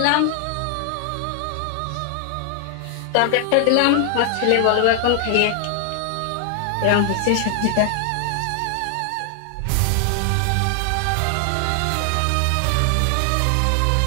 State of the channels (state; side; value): different; both; correlation 0.00